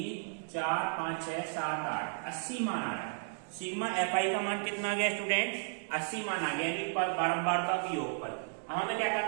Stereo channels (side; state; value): left; silent; digital silence